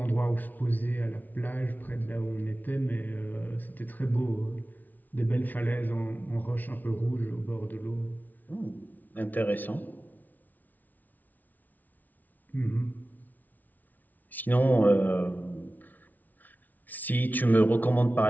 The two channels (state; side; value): late; right; 0.079 ms